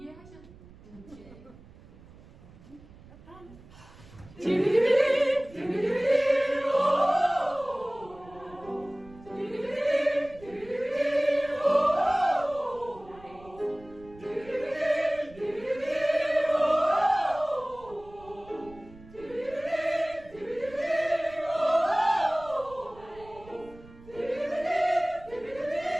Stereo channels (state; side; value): noise; right; rumble, 22 dB below the sound